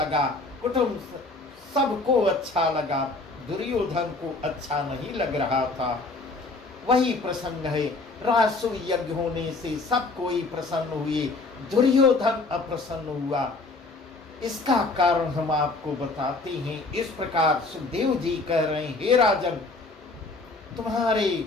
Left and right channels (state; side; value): quieter; right; 3.4 dB